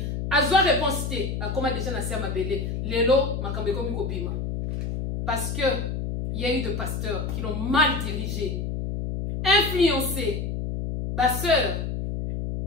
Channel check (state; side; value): noise; left; hum, 3 dB below the sound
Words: azwa réponse te akoma déjà na sia mabele lelo makambe komi kobima parce que il y a eu de pasteurs qui l'ont mal dirigé influencé ba sœur.